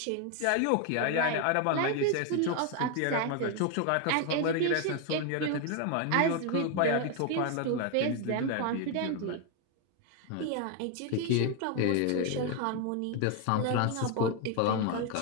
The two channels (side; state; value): both; different; correlation 0.01